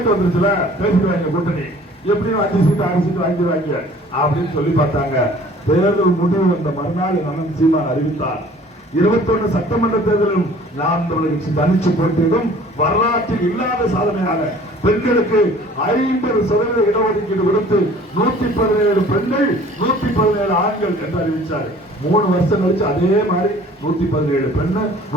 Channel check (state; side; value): normal; both; correlation 0.51